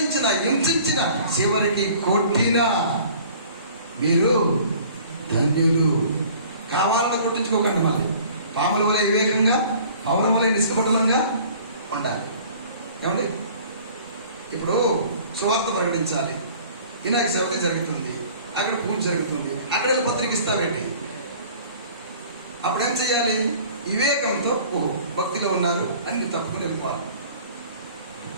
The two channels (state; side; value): inverted; both; correlation -0.50